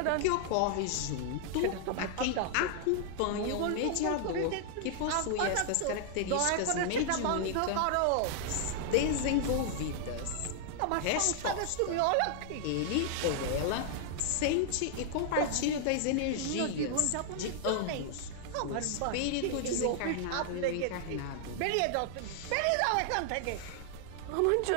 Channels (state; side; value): different; both; correlation 0.00